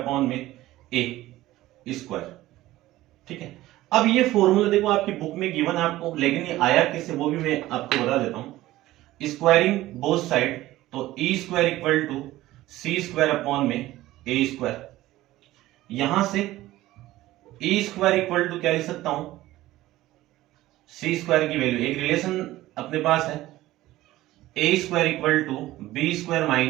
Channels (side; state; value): left; quieter; 16.2 dB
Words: में ए स्क्वायर। ठीक है, अब ये फॉर्मूला देखो आपकी बुक में गिवन है आपको, लेकिन ये आया किससे वो भी मैं आपको बता देता हूं। स्क्वायरिंग बोथ साइड, तो e square equal to c square upon में ए स्क्वायर। यहां से ई स्क्वायर इक्वल टू क्या लिख सकता हूं? सी स्क्वायर की वैल्यू, एक रिलेशन अपने पास है, a square equal to b square